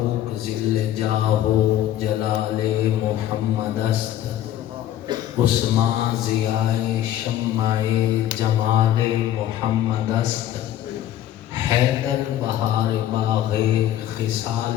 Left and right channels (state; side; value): quieter; right; 12.0 dB